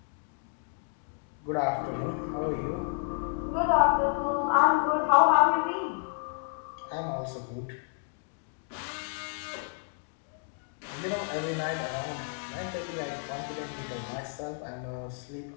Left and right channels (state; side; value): silent; right; 57 dB below the other